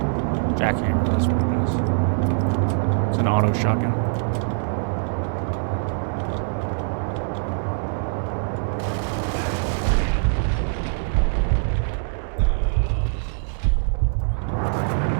Jackhammer, that's what it is. It's an auto shotgun.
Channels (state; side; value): silent; left; digital silence